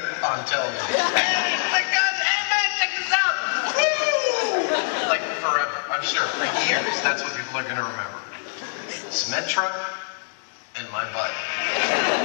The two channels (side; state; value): right; silent; digital silence